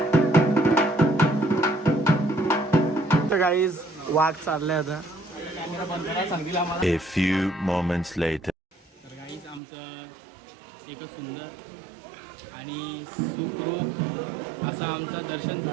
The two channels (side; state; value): left; drops out; at 9.6 s